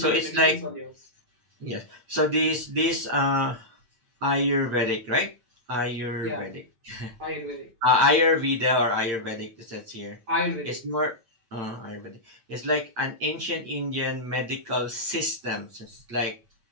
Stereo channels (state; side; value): late; left; 8.2 ms